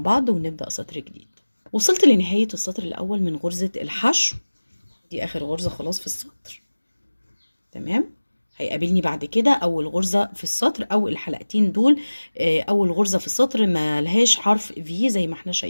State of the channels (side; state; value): both; inverted; correlation -1.00